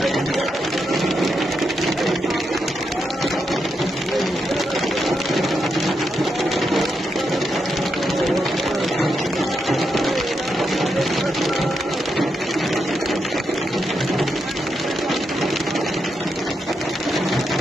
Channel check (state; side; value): normal; both; correlation 0.83